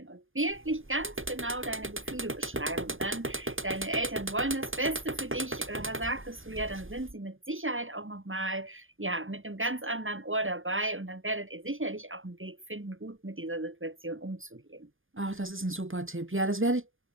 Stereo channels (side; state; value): left; late; 0.59 ms